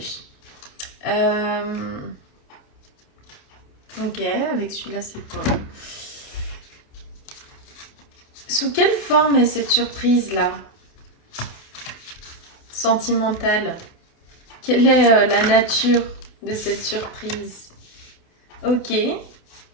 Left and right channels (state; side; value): late; right; 28 ms